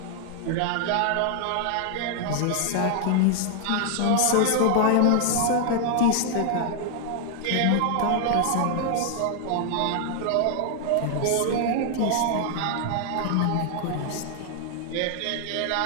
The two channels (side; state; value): both; different; correlation 0.00